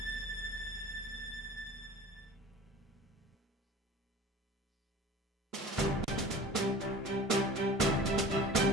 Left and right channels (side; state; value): both; normal; correlation 0.41